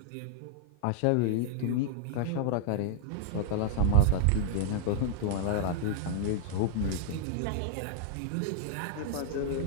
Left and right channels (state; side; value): different; both; correlation -0.01